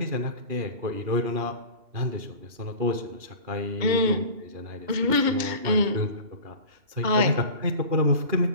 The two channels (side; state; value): left; late; 2.8 ms